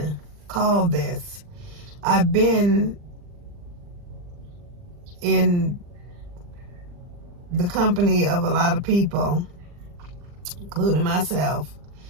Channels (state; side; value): late; left; 40 ms